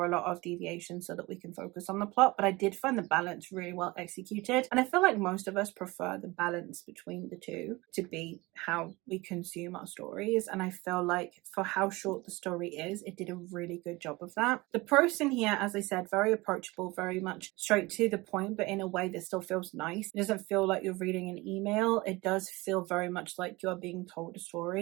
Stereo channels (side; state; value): left; quieter; 22.4 dB